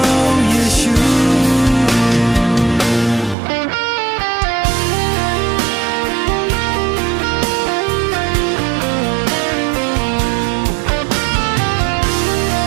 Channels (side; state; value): left; drops out; at 3.4 s